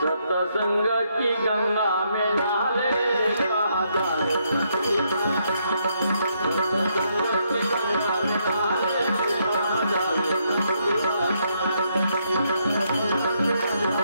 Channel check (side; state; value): both; inverted; correlation -0.75